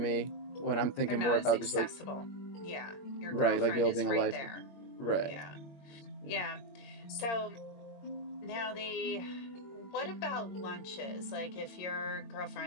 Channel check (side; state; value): right; late; 22 ms